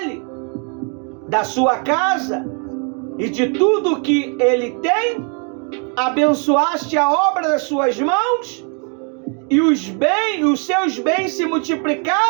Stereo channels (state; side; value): quieter; left; 38.4 dB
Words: da sua casa e de tudo que ele tem? Abençoaste a obra das suas mãos? e os seus bens se